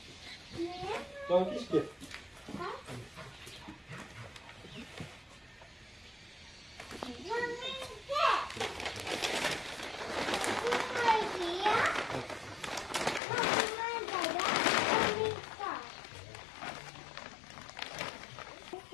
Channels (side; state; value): right; drops out; at 13.2 s